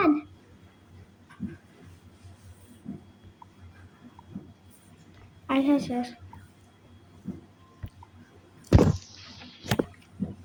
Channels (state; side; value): identical; both; correlation 1.00